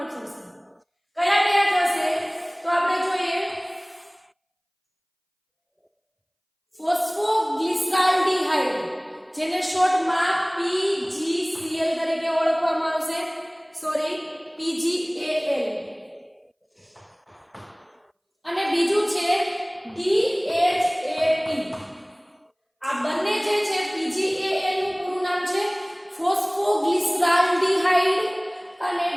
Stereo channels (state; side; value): identical; both; correlation 1.00